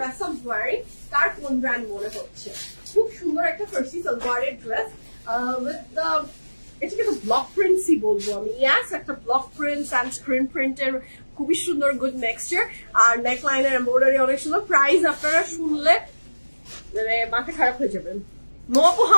I am wearing. কার কোন ব্র্যান্ড মনে হচ্ছে? খুব সুন্দর একটা ফার্সি সালোয়ারের ড্রেস উইথ দ্য, এটাকে তো ব্লক প্রিন্টসই বলবো আমি। ইয়াস, একটা ব্লক প্রিন্টস অ্যান্ড স্ক্রিন প্রিন্টের খুবই সুন্দর গুড নেক্সচার, আর নেক লাইনের এমব্রয়ডারি অনেক সুন্দর। প্রাইস আপনারা শুনলে মানে মাথা খারাপ হয়ে যাবেন। মপু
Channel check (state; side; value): inverted; both; correlation -1.00